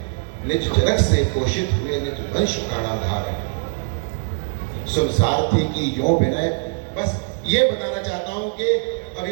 निज जनक से पोषित हुए निज वंश प्राणाधार है। सुन सारथी की यो विनय। बस ये बताना चाहता हूं कि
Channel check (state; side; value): silent; left; digital silence